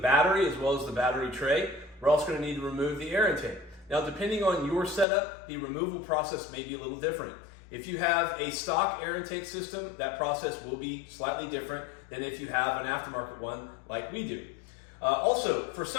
as well as the battery tray. We're also going to need to remove the air intake. Now, depending on your setup, the removal process may be a little different. If you have a stock air intake system, that process will be slightly different than if you have an aftermarket one like we do. Also, for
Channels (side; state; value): right; drops out; at 5.1 s